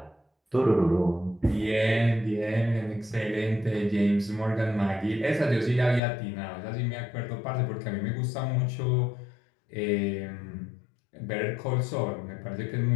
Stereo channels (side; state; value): right; drops out; at 6.0 s